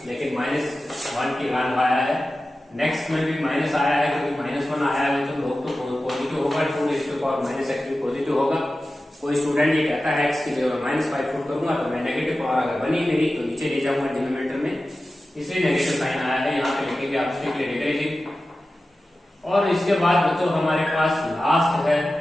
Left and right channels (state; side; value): normal; both; correlation 0.94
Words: लेकिन -1 की वैल्यू आया है। नेक्स्ट में भी माइनस आया है, क्योंकि -1 आया है तो लोग तो पॉजिटिव होगा, 2⁻−x भी पॉजिटिव होगा। कोई स्टूडेंट ये कहता है x की जगह -5 पुट करूंगा तो मैं नेगेटिव पावर अगर बनी मेरी तो नीचे ले जाऊंगा डिनोमिनेटर में, इसलिए नेगेटिव साइन आया है। यहाँ पे लिखेंगे आप स्ट्रिक्टली डिक्रीजिंग। और इसके बाद बच्चों हमारे पास लास्ट है,